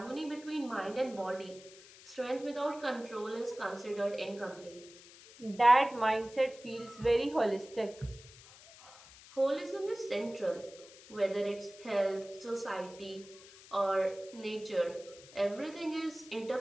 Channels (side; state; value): left; noise; hiss, 20 dB below the sound